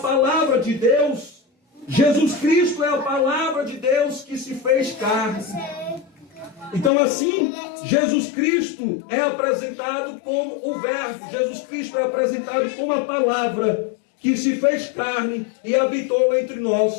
de Deus, Jesus Cristo é a palavra de Deus que se fez carne. Então assim, Jesus Cristo é apresentado como o verbo. Jesus Cristo é apresentado como a palavra que se fez carne e habitou entre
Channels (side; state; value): right; drops out; at 6.9 s